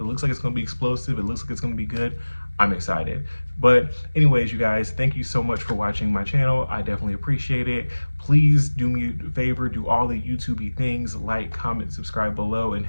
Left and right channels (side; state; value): both; inverted; correlation -1.00